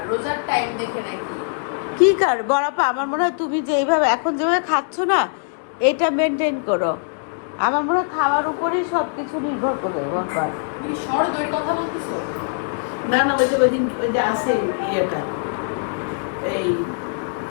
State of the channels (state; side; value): silent; right; digital silence